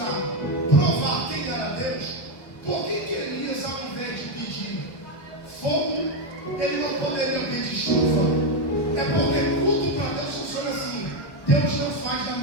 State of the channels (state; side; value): late; right; 1.1 ms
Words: provar quem era Deus, por que Elias, ao invés de pedir fogo, ele não poderia pedir chuva? É porque tudo para Deus funciona assim. Deus não faz na